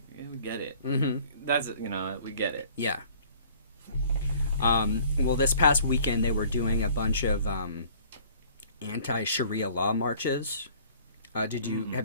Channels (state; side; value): inverted; both; correlation -0.53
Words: we get it. Mm-hmm. That's, you know, we get it. Yeah. Well, this past weekend they were doing a bunch of anti-Sharia law marches. Have